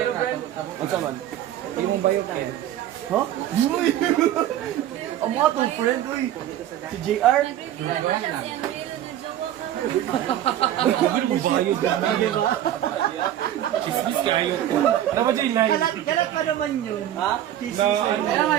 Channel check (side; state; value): left; quieter; 12.0 dB